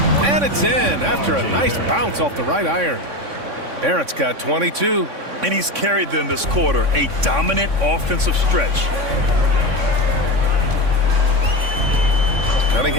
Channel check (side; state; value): left; late; 3.6 ms